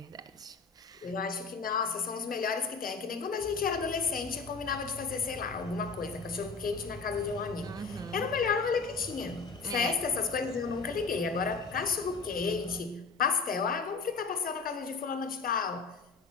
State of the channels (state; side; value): quieter; right; 4.7 dB